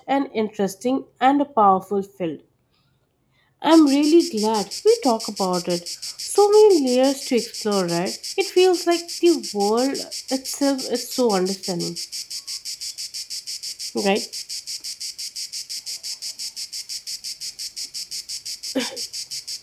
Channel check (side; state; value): both; identical; correlation 1.00